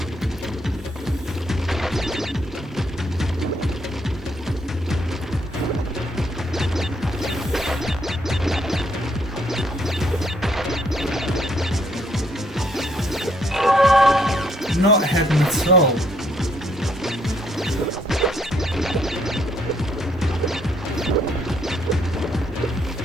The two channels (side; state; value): both; normal; correlation 0.70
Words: Not hidden at all.